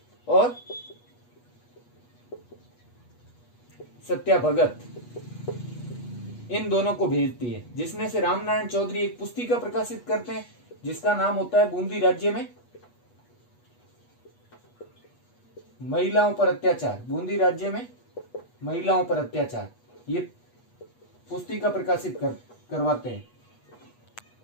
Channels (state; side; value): late; right; 8.3 ms